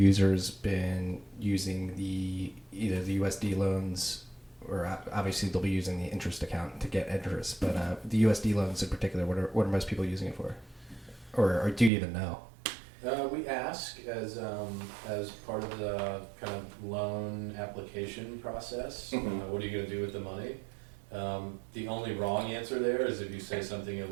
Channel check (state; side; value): drops out; left; at 11.9 s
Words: been using either the USD loans, or obviously they'll be using the interest account to get interest, but the USD loans in particular, what are most people using it for? Or do you even know? We ask as part of the kind of loan application process, what are you going to do with the money? The only wrong answer there is if you say something